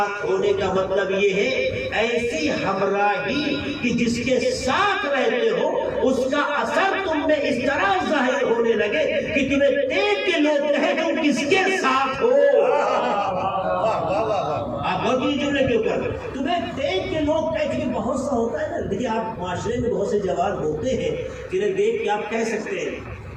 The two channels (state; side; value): identical; both; correlation 1.00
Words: ہونے کا مطلب یہ ہے ایسی ہمراہی کہ جس کے ساتھ رہتے ہو اس کا اثر تم میں اس طرح ظاہر ہونے لگے کہ تمہیں دیکھ کے لوگ کہیں تم کس کے ساتھ ہو. آپ بہت ہی جملے کے اوپر تمہیں دیکھ کے لوگ کہیں، بہت سا ہوتا ہے نا. دیکھیے آپ معاشرے میں بہت سے جوان ہوتے ہیں جنہیں دیکھ کے آپ کہہ سکتے ہیں